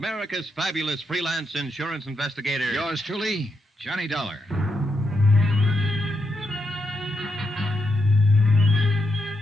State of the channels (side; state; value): both; normal; correlation 0.82